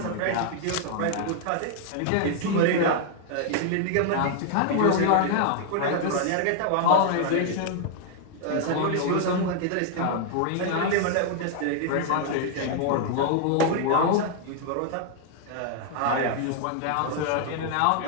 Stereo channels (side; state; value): both; different; correlation 0.00